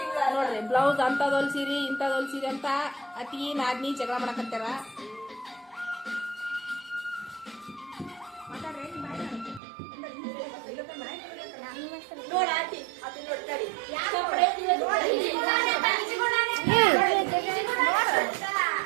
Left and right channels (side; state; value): left; drops out; at 9.6 s